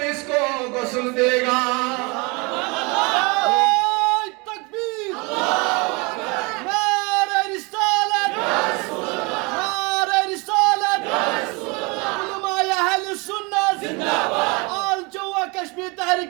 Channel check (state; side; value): quieter; left; 28.5 dB